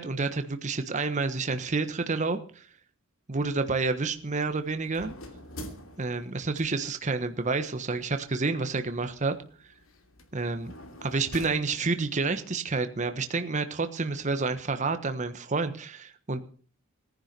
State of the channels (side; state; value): left; quieter; 3.4 dB